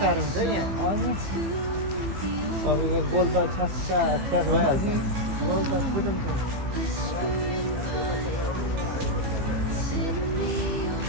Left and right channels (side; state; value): left; late; 15 ms